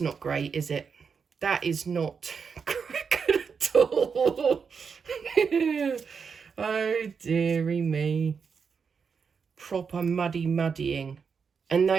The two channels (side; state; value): left; quieter; 5.9 dB